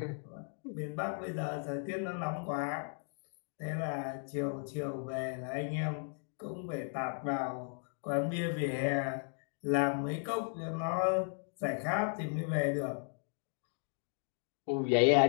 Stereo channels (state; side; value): silent; right; 54 dB below the other